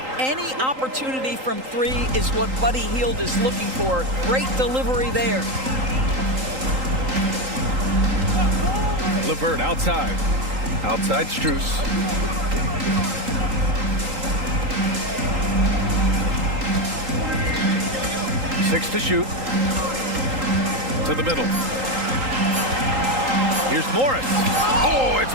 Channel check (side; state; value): left; late; 3.8 ms